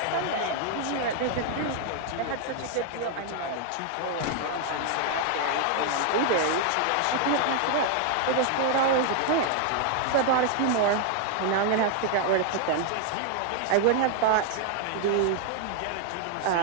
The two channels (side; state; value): both; different; correlation 0.00